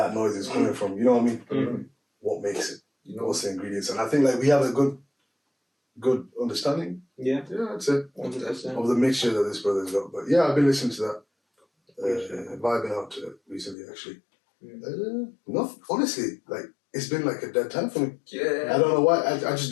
noise is coming from. You know what I mean? Mm-hmm. What makes it? What's the ingredients? And I think, like, we have a good understanding. Yeah. Yeah, that's it. 100%. Of the mixture that this brother's got. But yeah, I've been listening to that. Vibing out to it recently, actually. Honestly, like, it's been like a dead time for me. Yeah. I don't know why. I just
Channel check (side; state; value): right; drops out; at 13.8 s